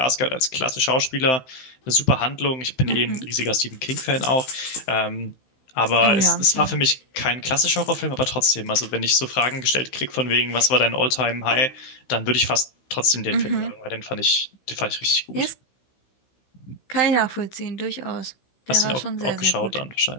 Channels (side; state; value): right; late; 15 ms